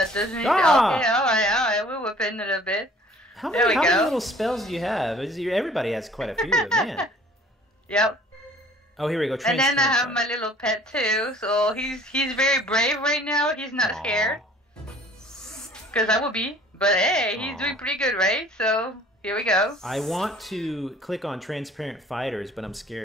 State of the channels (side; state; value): both; normal; correlation 0.53